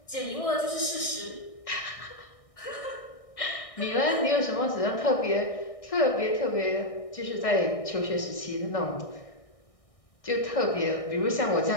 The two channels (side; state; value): right; late; 1.6 ms